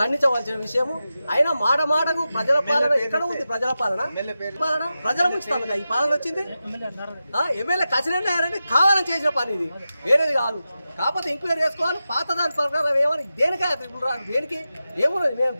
విషయము. అయినా మాటకు ప్రజల పాలన ఎక్కడ ఉంది? ప్రజల పాలన ప్రజల ముంచుతాను ఈ పాలన వచ్చింది. ఎమ్మెల్యే కచ్చినట్టు కావాలని చేసిన పని ఇది, వేరేది కాదు. కాకపోతే ఎంక్వైరీ చేసుకోవాలి. పాత దాని ప్రకారం ఏమని దేనికా దేనికి ఏమున్నది? మేము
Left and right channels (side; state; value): both; inverted; correlation -0.92